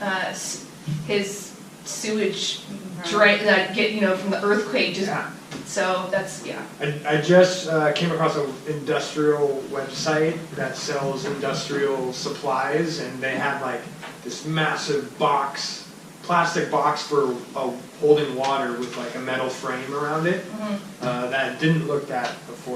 his sewage drain, that get, you know, from the earthquake, just, Yeah. so that's, yeah. I just came across an industrial website that sells industrial supplies, and they had like this massive box, plastic box for holding water with like a metal frame around it. That didn't look that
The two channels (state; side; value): identical; both; correlation 1.00